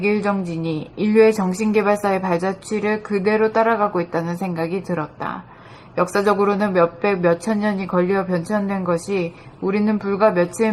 정진이 인류의 정신개발사의 발자취를 그대로 따라가고 있다는 생각이 들었다. 역사적으로는 몇백, 몇천 년이 걸려 변천된 것이 우리는 불과 며칠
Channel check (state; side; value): identical; both; correlation 1.00